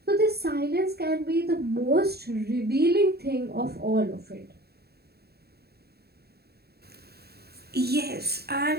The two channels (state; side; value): late; left; 0.46 ms